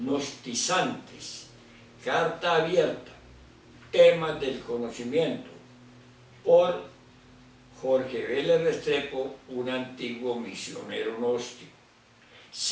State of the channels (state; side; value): identical; both; correlation 1.00